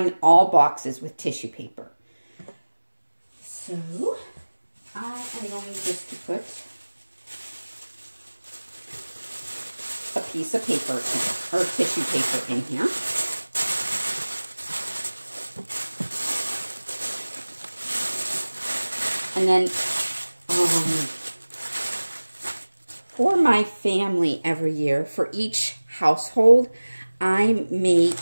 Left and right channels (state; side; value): inverted; both; correlation -1.00